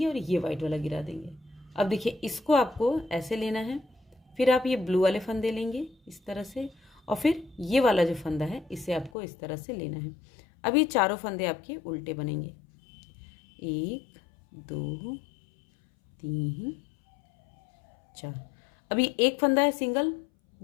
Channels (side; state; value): right; drops out; at 9.1 s